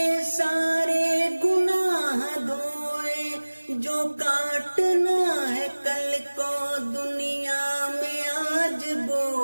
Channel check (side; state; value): both; inverted; correlation -1.00